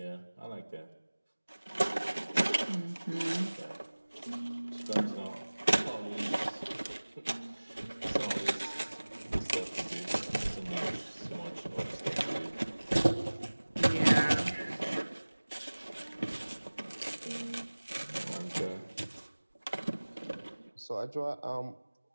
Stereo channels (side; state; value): both; inverted; correlation -1.00